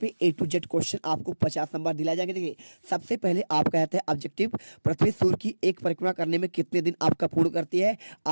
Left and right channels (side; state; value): both; inverted; correlation -1.00